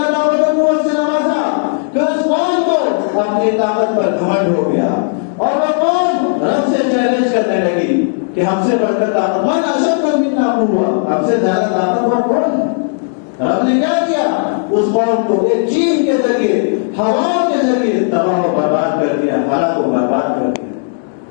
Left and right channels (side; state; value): right; silent; 70 dB below the other